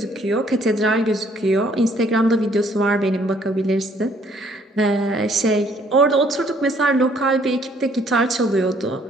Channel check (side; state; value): both; normal; correlation 0.63